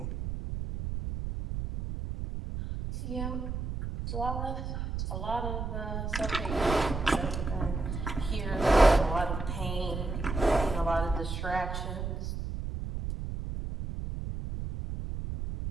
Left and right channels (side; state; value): right; noise; rumble, 4 dB below the sound